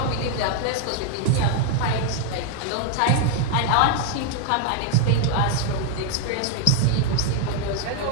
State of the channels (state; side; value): different; both; correlation 0.00